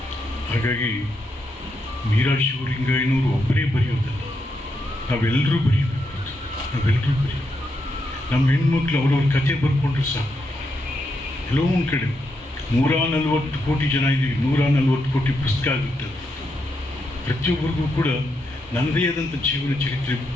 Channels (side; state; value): both; normal; correlation 0.82